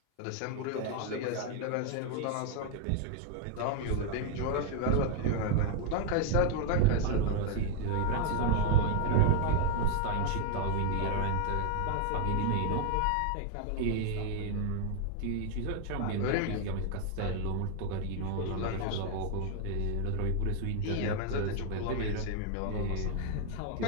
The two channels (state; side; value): different; both; correlation 0.00